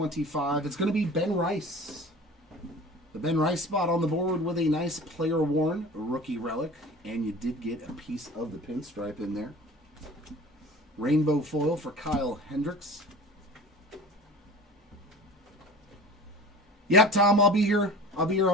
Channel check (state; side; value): normal; both; correlation 0.40